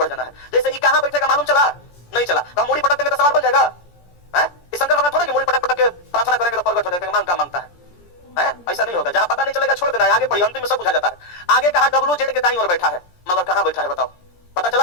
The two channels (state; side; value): late; right; 17 ms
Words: जाना है। जैसे ये कहां बैठेगा मालूम चला, नहीं चला, तो हम मूड़ी पटक देंगे तो सवाल बन जाएगा। शंकर भगवान थोड़े कि मूड़ी पटक पटक के प्रार्थना करेंगे तो प्रकट हो जाएगा, मांग का मांगता है। ऐसा नहीं होगा। जहां पता नहीं चलेगा छोड़ देना है, आगे पढ़िए, अंतिम में सब बुझा जाता है। आगे कहा डब्ल्यू जेड के दाईं ओर बैठा है, मगर कहां बैठा है बताओ? पता